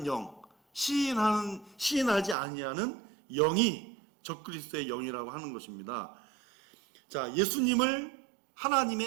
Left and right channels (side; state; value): left; drops out; at 2.4 s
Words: 영, 시인하지 아니하는 영이 적그리스도의 영이라고 하는 것입니다. 자, 예수님을